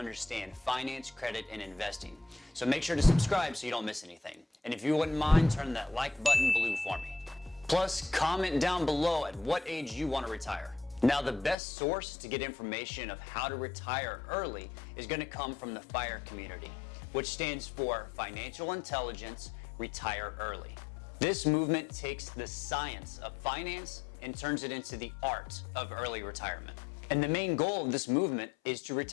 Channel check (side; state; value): right; drops out; at 11.6 s